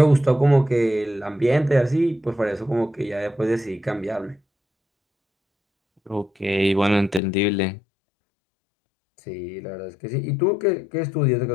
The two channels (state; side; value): drops out; right; at 7.2 s